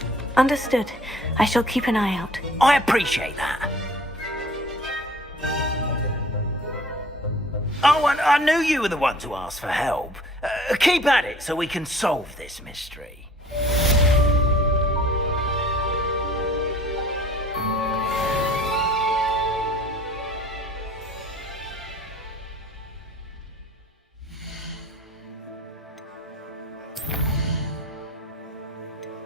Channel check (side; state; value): both; normal; correlation 0.50